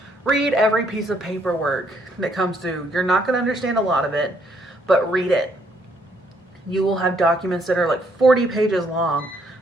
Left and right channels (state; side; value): normal; both; correlation 0.69